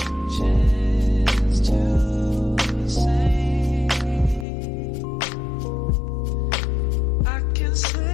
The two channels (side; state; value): right; drops out; at 4.5 s